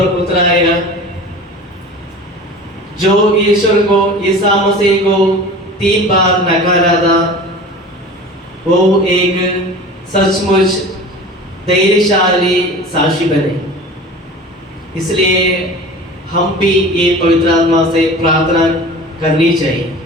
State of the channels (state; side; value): normal; both; correlation 0.38